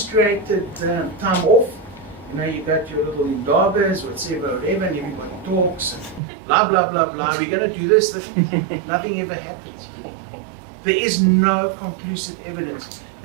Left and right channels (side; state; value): left; drops out; at 6.2 s